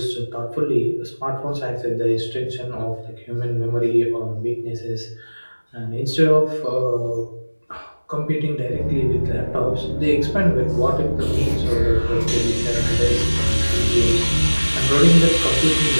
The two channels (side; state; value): both; inverted; correlation -1.00